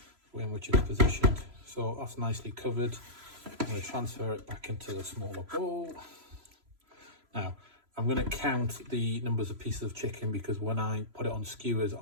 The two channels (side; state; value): left; late; 3.0 ms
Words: way in which it's positioned. So that's nicely covered. I'm going to transfer it back into the smaller bowl. Now, I'm going to count the numbers of pieces of chicken, because when I put it on skewers,